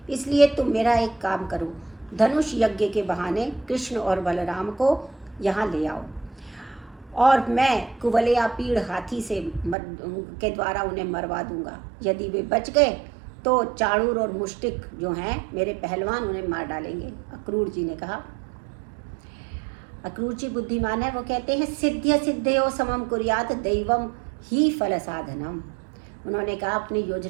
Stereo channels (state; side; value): drops out; left; at 9.8 s